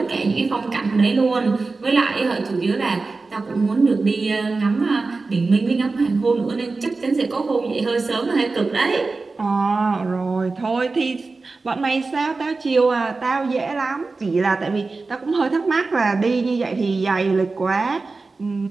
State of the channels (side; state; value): left; quieter; 3.8 dB